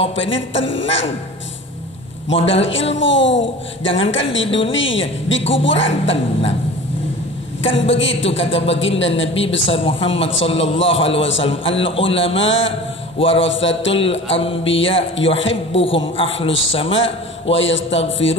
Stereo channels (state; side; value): normal; both; correlation 0.38